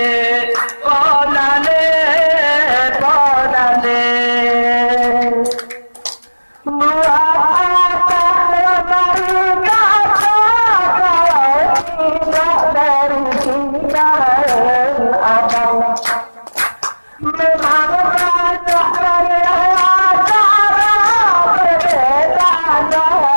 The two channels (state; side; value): inverted; both; correlation -1.00